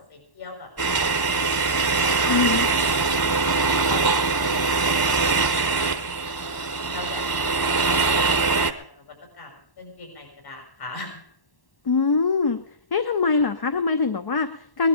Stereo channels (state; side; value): late; right; 1.1 ms